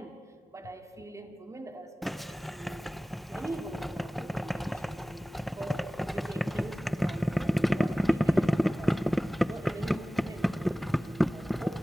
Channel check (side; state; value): both; normal; correlation 0.98